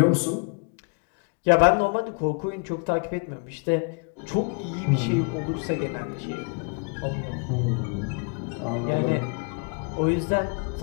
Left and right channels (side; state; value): right; quieter; 37.6 dB